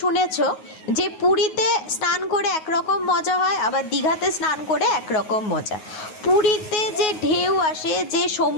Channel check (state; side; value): late; right; 9.4 ms